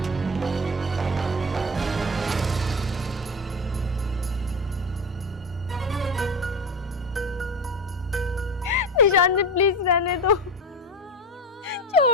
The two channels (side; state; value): both; normal; correlation 0.25